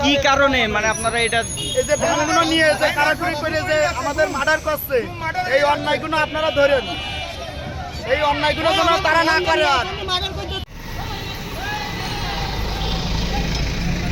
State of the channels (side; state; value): both; identical; correlation 1.00